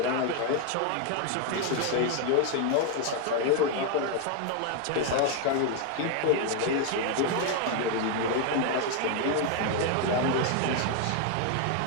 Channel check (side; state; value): both; different; correlation 0.01